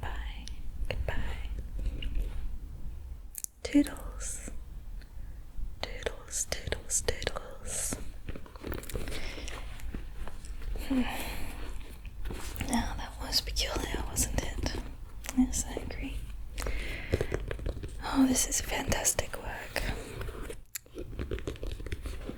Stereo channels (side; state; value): both; identical; correlation 1.00